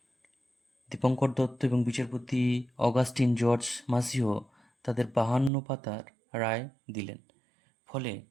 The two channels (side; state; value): left; drops out; at 5.5 s